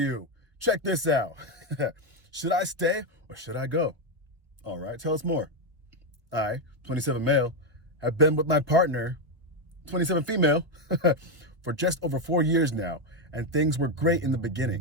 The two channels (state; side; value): late; left; 1.4 ms